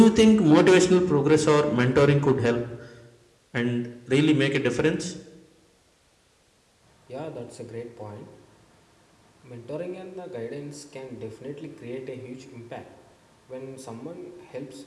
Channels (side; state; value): both; identical; correlation 1.00